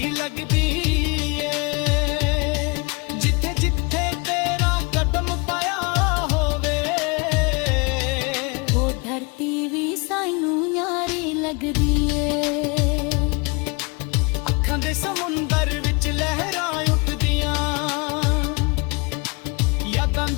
ਲੱਗਦੀ ਏ। ਜਿੱਥੇ ਜਿੱਥੇ ਤੇਰਾ ਕਦਮ ਪਾਇਆ ਹੋਵੇ, ਉਹ ਧਰਤੀ ਵੀ ਸਾਨੂੰ ਯਾਰੀ ਲੱਗਦੀ ਏ। ਅੱਖਾਂ ਦੇ ਸਮੁੰਦਰ ਵਿੱਚ ਲਹਿਰਾਂ ਉੱਠਦੀਆਂ, ਯਾਦਾਂ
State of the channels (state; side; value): quieter; right; 29.6 dB